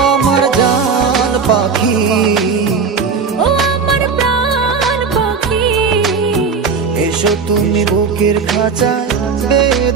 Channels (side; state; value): left; quieter; 5.4 dB